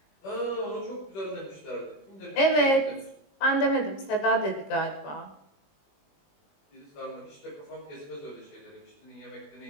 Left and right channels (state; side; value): late; right; 21 ms